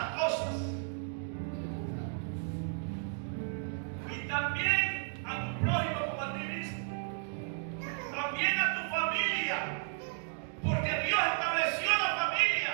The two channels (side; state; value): left; silent; 55 dB below the other